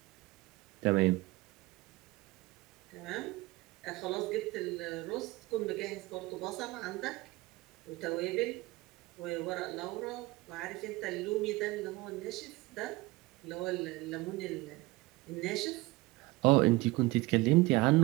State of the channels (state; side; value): quieter; left; 21.3 dB